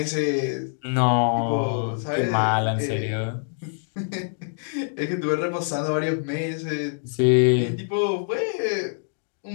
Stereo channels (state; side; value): silent; right; digital silence